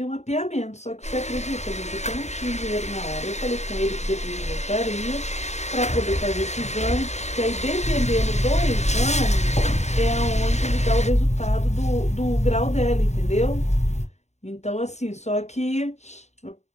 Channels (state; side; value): late; right; 0.33 ms